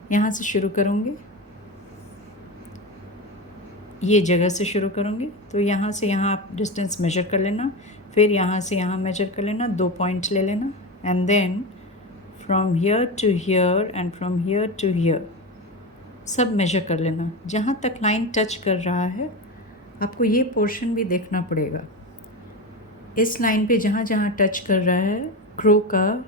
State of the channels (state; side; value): normal; both; correlation 0.21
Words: यहाँ से शुरू करूँगी, ये जगह से शुरू करूँगी। तो यहाँ से यहाँ आप डिस्टेंस मेजर कर लेना, फिर यहाँ से यहाँ मेजर कर लेना, 2 पॉइंट ले लेना। And then from here to here and from here to here सब मेजर कर लेना। जहाँ तक लाइन टच कर रहा है आपको ये पोर्शन भी देखना पड़ेगा। इस लाइन पे जहाँ जहाँ टच कर रहा है क्रो का